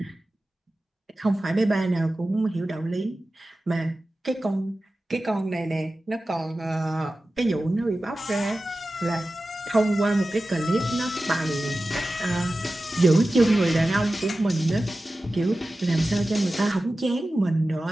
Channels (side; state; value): both; normal; correlation 0.95